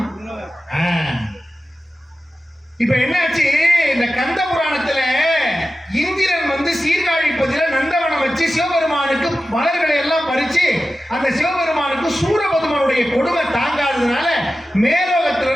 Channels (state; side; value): normal; both; correlation 0.94